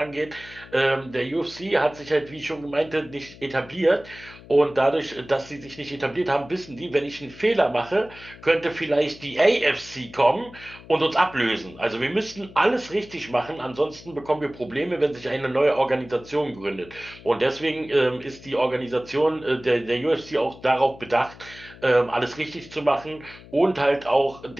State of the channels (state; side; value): noise; left; hum, 20 dB below the sound